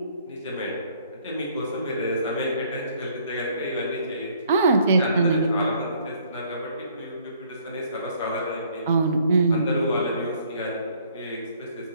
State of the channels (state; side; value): inverted; both; correlation -0.62